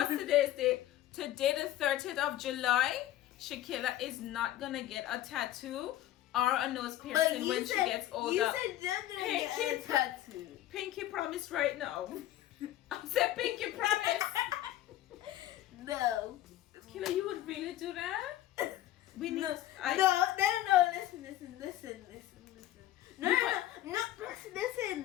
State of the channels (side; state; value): right; quieter; 13.8 dB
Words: today's date? Today the 30th of July. Shakila is not gonna get a tattoo or a nose piercing when she gets older. You said you're gonna get a tattoo. Pinky promise right now. I said Pinky promise. No. Killer, you would really do that? We need. No. Listen. No.